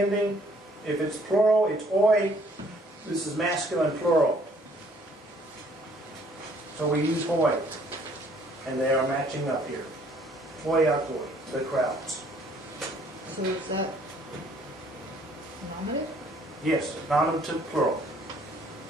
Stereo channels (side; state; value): both; normal; correlation 0.61